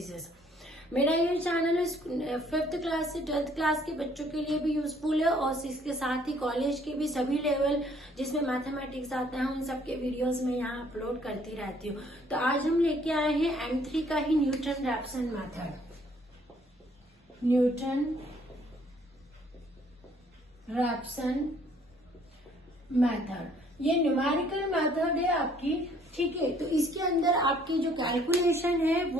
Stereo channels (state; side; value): normal; both; correlation 0.62